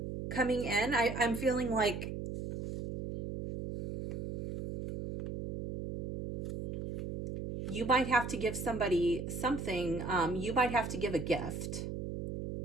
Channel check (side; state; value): right; noise; hum, 5 dB below the sound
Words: coming in. I'm feeling like you might have to give somebody something. You might have to give a gift.